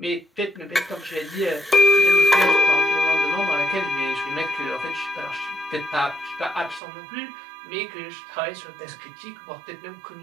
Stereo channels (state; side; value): drops out; left; at 6.8 s